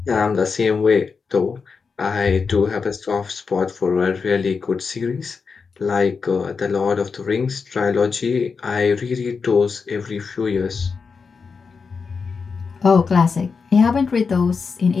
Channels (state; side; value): quieter; right; 5.2 dB